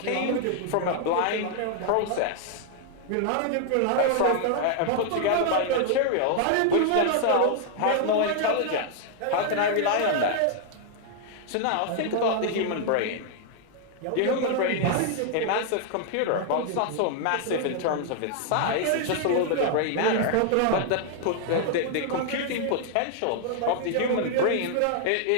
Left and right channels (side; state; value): both; different; correlation 0.00